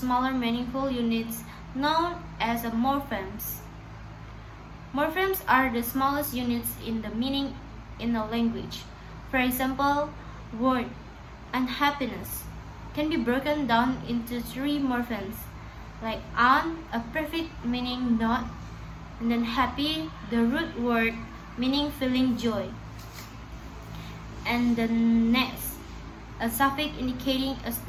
meaningful units known as morphemes. Morphemes are the smallest units in the meaning in a language. For example, word unhappiness can be broken down into 3 morphemes, like un, a prefix meaning not, and then happy, the root word meaning feeling joy, and the next, a suffix indicating a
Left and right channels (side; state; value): both; identical; correlation 1.00